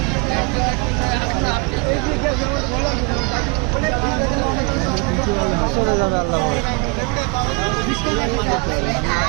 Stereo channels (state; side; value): quieter; left; 29.6 dB